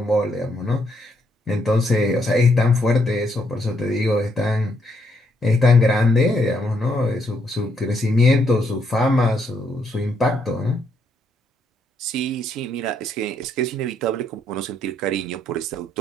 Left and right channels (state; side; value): normal; both; correlation 0.74